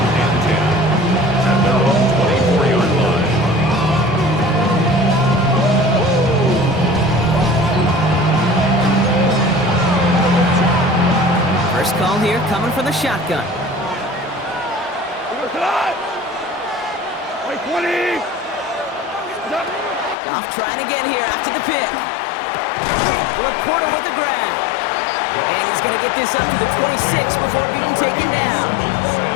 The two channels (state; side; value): drops out; right; at 20.2 s